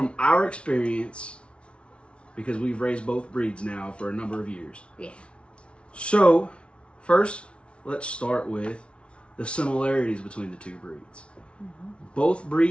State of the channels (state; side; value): late; right; 0.059 ms